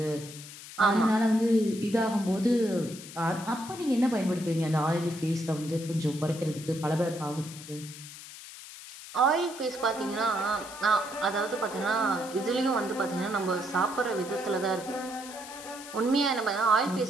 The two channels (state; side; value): noise; left; hiss, 14 dB below the sound